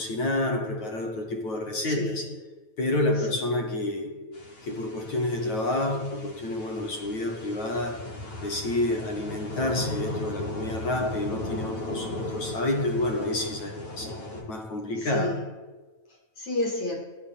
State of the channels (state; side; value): late; right; 9.2 ms